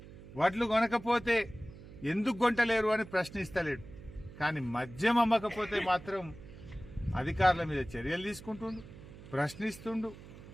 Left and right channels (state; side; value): noise; right; hum, 17 dB below the sound